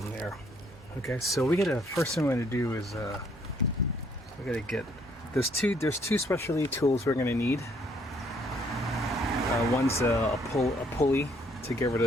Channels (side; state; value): both; normal; correlation 0.66